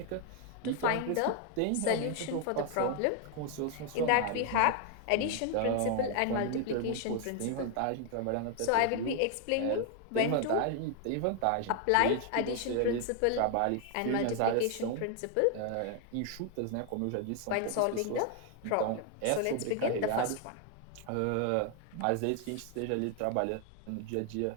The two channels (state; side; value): different; both; correlation 0.00